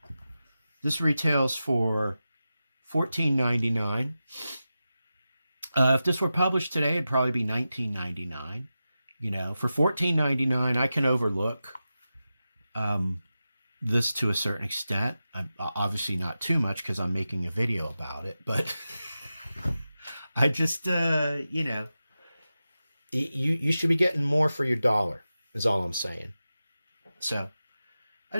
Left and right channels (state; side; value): inverted; both; correlation -0.93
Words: This retails for $14.99. If this were published today, it'd probably be $19.99. You know, for $14.99, I can overlook this to a certain extent. Obviously not too much because I'm making a video about it, but I just, you know, you should be getting more for your dollar is all I'm saying. So I